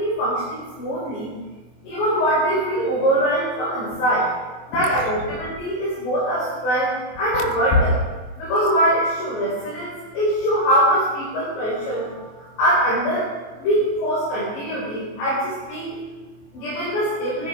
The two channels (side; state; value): right; late; 24 ms